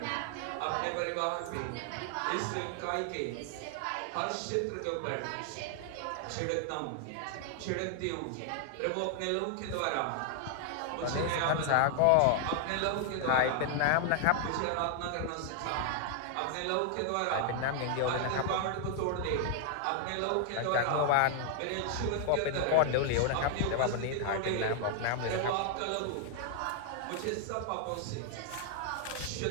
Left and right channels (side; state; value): both; different; correlation 0.00